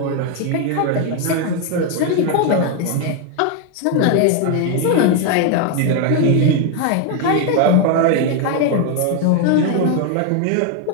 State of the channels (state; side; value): different; both; correlation 0.01